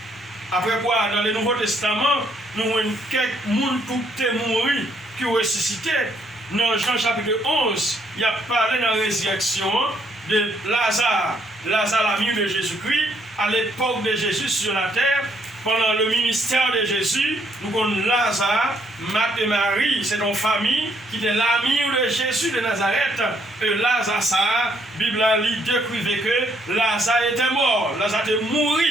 Après quoi, dans le Nouveau Testament, nous avons quelques gens qui étaient morts, qui ressuscité. Dans Jean chapitre 11, il y a parlé de la résurrection de Lazare. Lazare, l'ami de Jésus-Christ, à l'époque de Jésus sur la terre, pendant le ministère de Jésus, nous avons Lazare, Marthe et Marie, c'est une famille qui était l'ami de Jésus de Nazareth. Et Lazare, ça, la Bible a décrit que Lazare était mort, Lazare était mort.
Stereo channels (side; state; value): both; normal; correlation 0.70